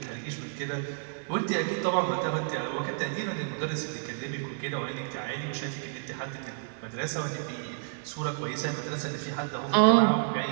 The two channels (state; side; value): silent; left; 58 dB below the other